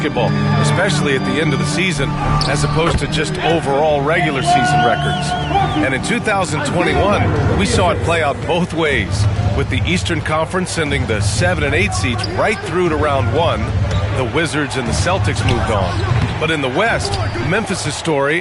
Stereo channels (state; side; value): identical; both; correlation 1.00